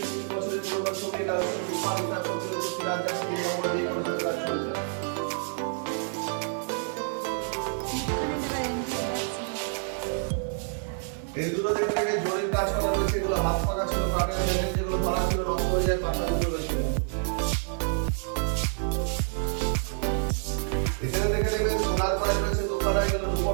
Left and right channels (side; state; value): left; silent; 59 dB below the other